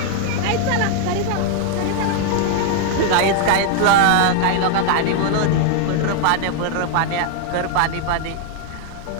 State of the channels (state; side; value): different; both; correlation 0.00